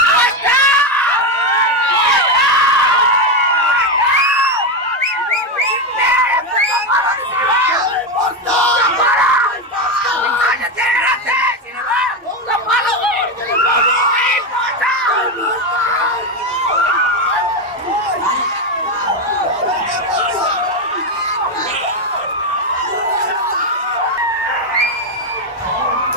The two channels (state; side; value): normal; both; correlation 0.10